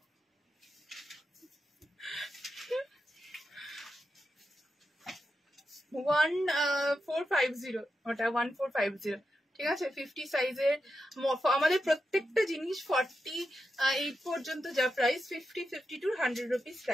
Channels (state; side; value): normal; both; correlation 0.88